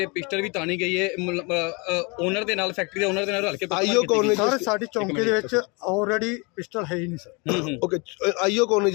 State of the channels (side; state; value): right; quieter; 29.9 dB